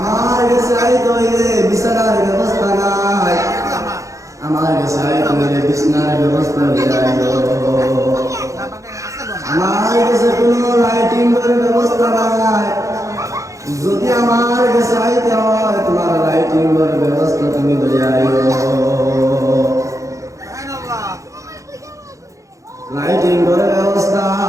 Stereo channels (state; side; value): late; left; 0.15 ms